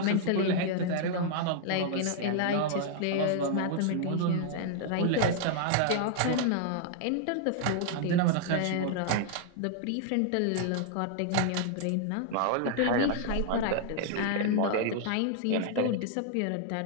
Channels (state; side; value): different; both; correlation 0.00